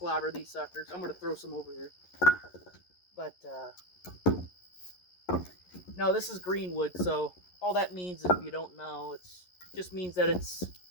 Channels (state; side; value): late; right; 11 ms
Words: these suckers. I'm gonna throw some over here. But no, this is greenwood, so all that means, if you don't know, it's just means that it's,